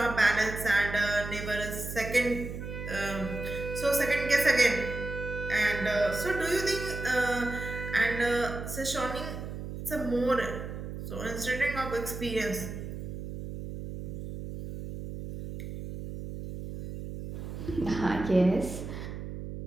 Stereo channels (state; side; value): noise; right; hum, 8 dB below the sound